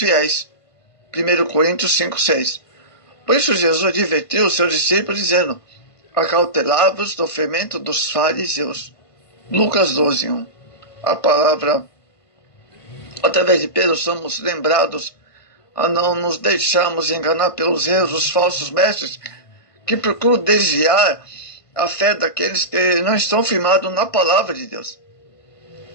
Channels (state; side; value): late; right; 1.5 ms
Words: 1 Coríntios 5:6. Por isso Jesus advertiu os seus discípulos, dizendo: acautelai-vos do fermento dos fariseus. Lucas 12:1. A palavra, através de Pedro, somos lembrados a não nos deixarmos enganar pelos erros dos falsos mestres que procuram desviar a fé daqueles que não estão firmados na palavra de Deus.